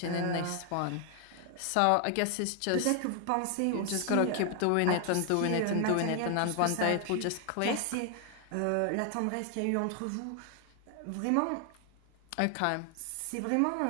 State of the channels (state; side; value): different; both; correlation 0.00